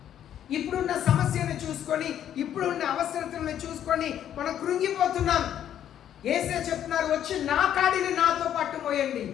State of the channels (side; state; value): right; quieter; 10.4 dB